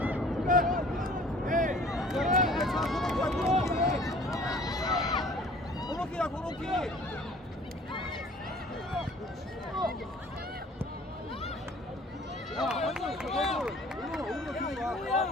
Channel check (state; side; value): normal; both; correlation 0.51